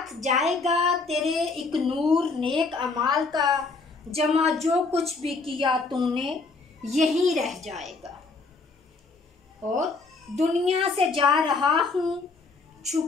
जाएगा तेरे एक नूर नेक अमाल का, जमा जो कुछ भी किया तूने यहीं रह जाएगा। और दुनिया से जा रहा हूँ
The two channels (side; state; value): right; quieter; 4.0 dB